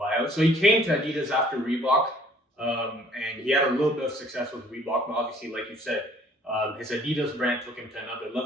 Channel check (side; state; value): both; normal; correlation 0.57